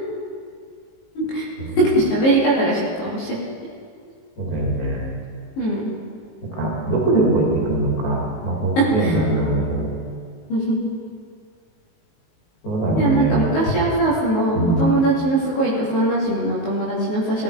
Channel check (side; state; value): right; late; 19 ms